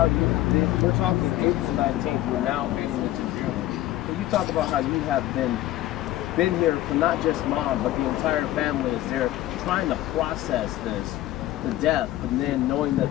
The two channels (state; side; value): quieter; right; 14.9 dB